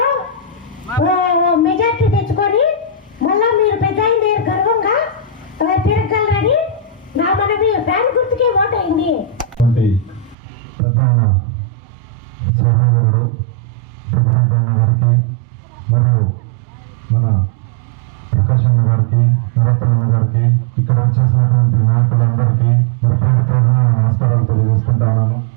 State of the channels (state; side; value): drops out; left; at 10.4 s